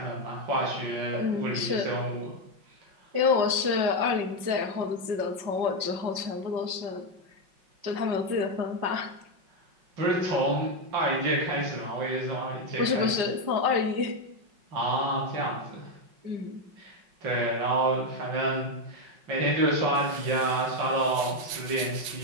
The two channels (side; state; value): left; late; 5.4 ms